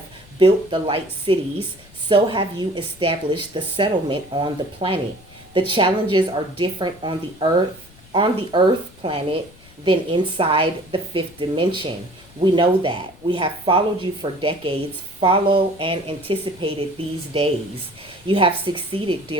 built the light cities, so have you established the settlement on the planet. The challenges are different on the earth planet than inside the fifth dimension. We know that. We have followed you for decades, follow and anticipated these days. You have succeeded,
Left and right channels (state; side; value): noise; left; rumble, 25 dB below the sound